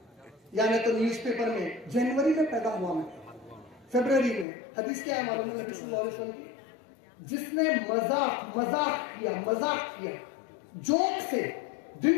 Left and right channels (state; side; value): drops out; right; at 4.5 s